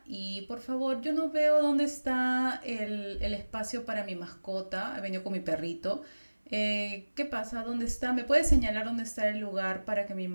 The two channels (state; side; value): inverted; both; correlation -1.00